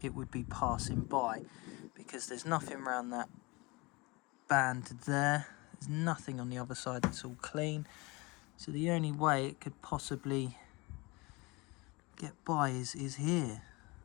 it would be passing by, because there's nothing around that band there. There's nothing on the other side that's all clean. So the only way it could possibly get by is here.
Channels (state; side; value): quieter; right; 25.3 dB